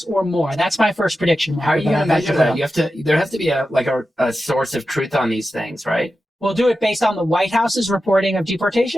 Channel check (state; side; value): normal; both; correlation 0.92